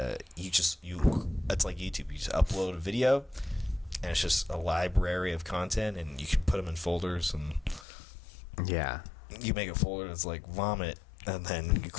like YouTube. You just upload a video, and it's just a library of content, and you can put them in folders, and you make a folder that's like vomit, and then you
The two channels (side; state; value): right; drops out; at 7.9 s